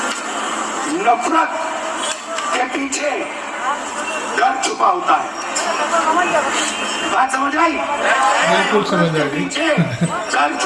नफरत के पीछे डर छुपा होता है। बात समझ आई? बिल्कुल समझ आई। पीछे डर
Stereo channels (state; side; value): identical; both; correlation 1.00